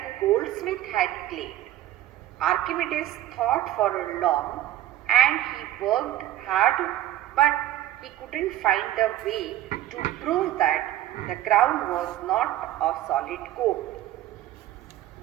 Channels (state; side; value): quieter; left; 13.4 dB